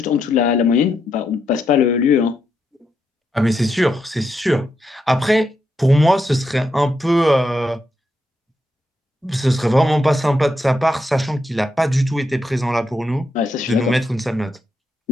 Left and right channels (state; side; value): normal; both; correlation 0.82